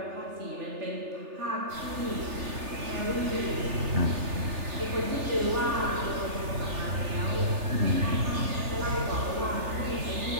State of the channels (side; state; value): left; late; 3.3 ms